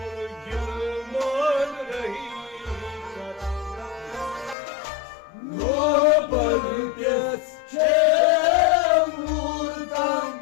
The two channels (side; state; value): right; drops out; at 4.5 s